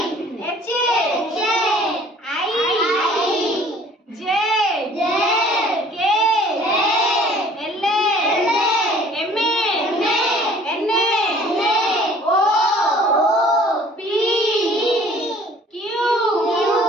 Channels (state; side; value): normal; both; correlation 0.53